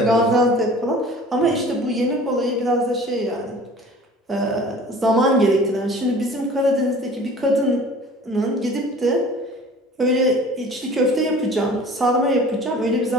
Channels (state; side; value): normal; both; correlation 0.45